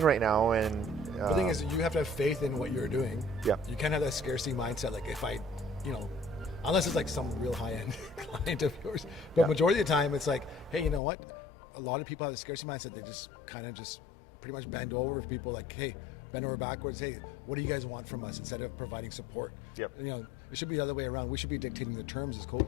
right now, and the thing is, you have to have faith in what you're doing. Yeah. You can't have that scarcity mindset. If I, unless it's some real high-end client of yours. But majority of the time, it's like, hey, you know what? A lot of people have a scarcity mindset. They just kind of pretty much bend over if people hey, bend over backwards. Hey, what do you guys want from us? Instead of providing support. Yep. It should be the other way around. We should be dictating the terms as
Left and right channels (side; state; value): right; drops out; at 11.0 s